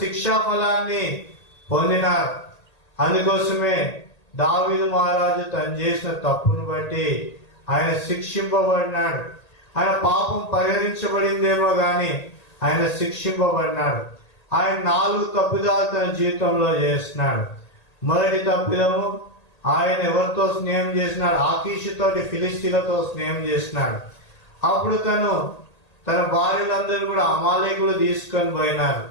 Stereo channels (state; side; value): late; right; 1.8 ms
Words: శిక్షా ఫలాన్ని పొందినారు. అందుకోసమే దావీదు మహారాజు తను చేసిన తప్పును బట్టి ఆయన శిక్షింపబడినాడు. ఆయన పాపం పరిహరించబడిందేమో గాని ఆయన శిక్షింపబడినాడు. ఆయన 4 తప్పిదాలు తన జీవితంలో చేస్తున్నాడు. మొదటి తప్పిదము, ఆయన ఎవరితో స్నేహం చేసినాడు? ఆకీషుతోటి, ఫిలిస్తీన్లతో స్నేహం చేసినాడు. అప్పుడు తన భార్యలందరూ కూడా అమాలేకులు తీసుకొని పోయినారు.